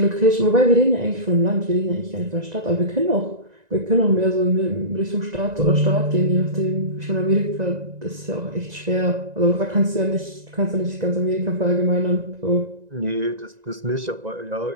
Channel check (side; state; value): left; late; 1.9 ms